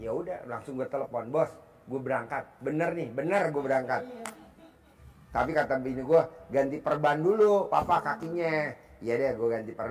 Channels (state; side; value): identical; both; correlation 1.00